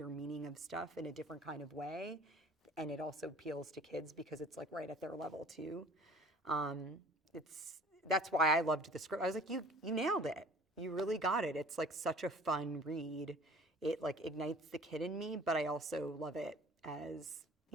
meaning of stuff in a different kind of way. And it also appeals to kids because it's like right at their level too. That's why I loved the script. I was like, you nailed it. you really got it. It's like such a fun read. It like ignites the kid in me, but I also love it as,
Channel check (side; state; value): both; normal; correlation 0.48